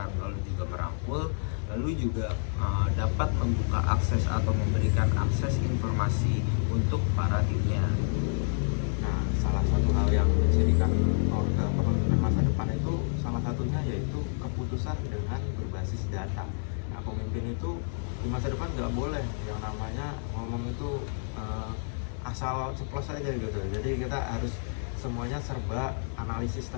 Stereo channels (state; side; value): silent; right; digital silence